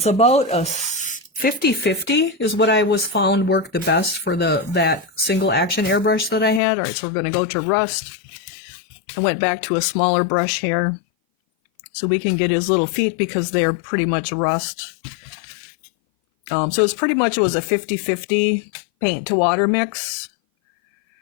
about a 50-50 is what I was found worked the best for that single action airbrush that I had. All right, so we're going to go to rust. I went back to a smaller brush here so we can get his little feet because they're pretty much rust. So it was a 50-50 paint to water mix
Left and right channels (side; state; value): right; drops out; at 6.6 s